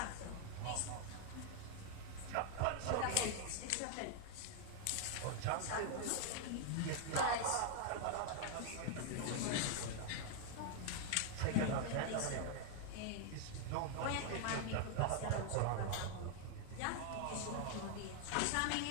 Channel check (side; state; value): both; different; correlation 0.00